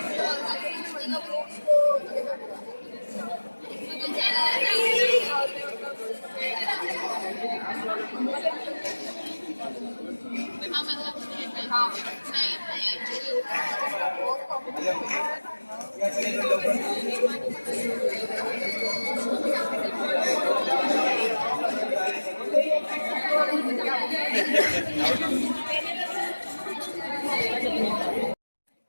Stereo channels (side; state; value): both; inverted; correlation -1.00